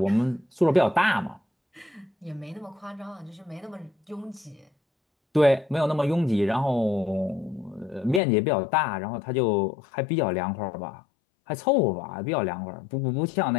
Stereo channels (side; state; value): right; drops out; at 8.2 s